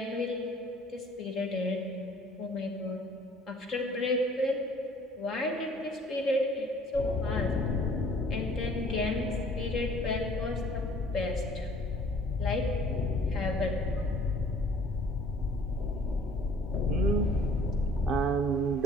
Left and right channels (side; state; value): both; normal; correlation 0.54